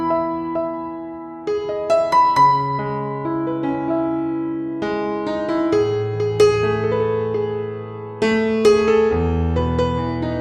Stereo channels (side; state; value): both; identical; correlation 1.00